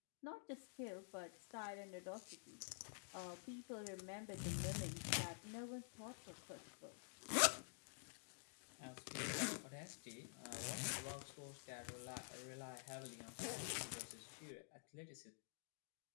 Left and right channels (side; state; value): right; silent; digital silence